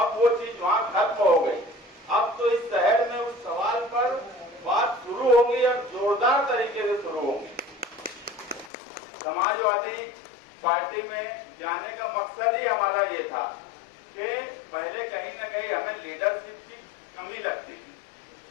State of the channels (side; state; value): right; drops out; at 8.7 s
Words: वो चीज वहाँ खत्म हो गई। अब तो इस शहर में उस सवाल पर बात शुरू होगी और जोरदार तरीके से शुरू होगी। समाजवादी पार्टी में जाने का मकसद ही हमारा ये था कि पहले कहीं ना कहीं हमें लीडरशिप की कमी लगती थी।